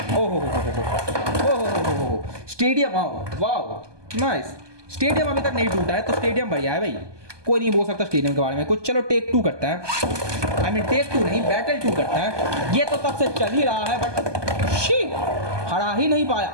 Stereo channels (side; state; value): left; late; 1.2 ms